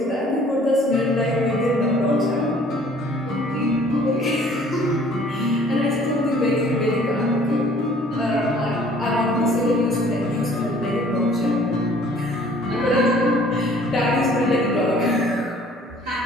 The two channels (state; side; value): normal; both; correlation 0.55